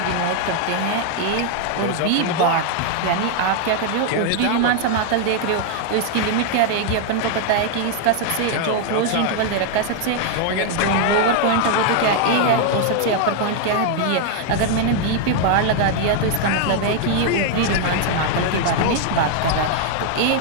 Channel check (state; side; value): different; both; correlation 0.00